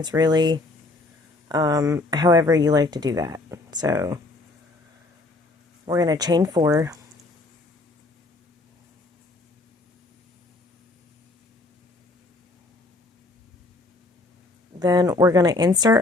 really. However you like to do that. So we're going to chain 4. Then we're going to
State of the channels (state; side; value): quieter; right; 3.1 dB